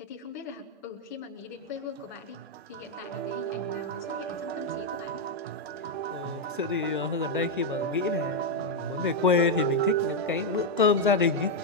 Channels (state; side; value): normal; both; correlation 0.01